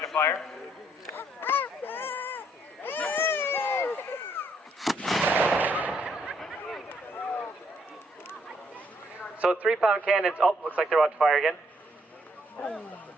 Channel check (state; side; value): normal; both; correlation 0.70